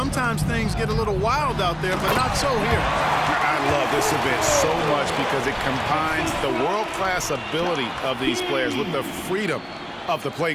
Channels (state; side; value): identical; both; correlation 1.00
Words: things get a little wild out there, but not so here. I love this event so much because it combines the world-class ability of these players with the freedom of the